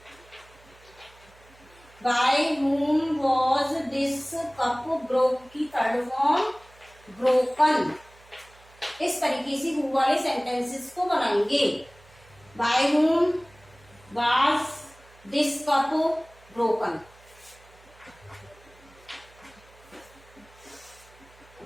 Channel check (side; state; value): right; noise; hum, 26 dB below the sound